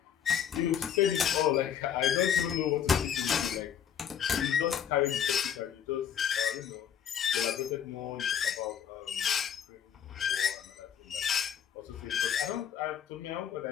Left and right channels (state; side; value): quieter; right; 8.7 dB